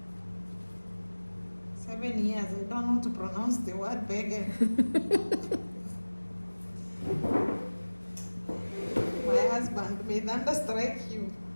7 years, I don't know how to pronounce the word beggar. My husband may thunderstrike you.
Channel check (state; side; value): inverted; both; correlation -1.00